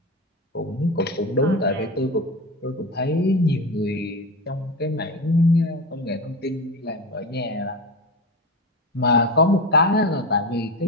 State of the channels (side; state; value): both; normal; correlation 0.23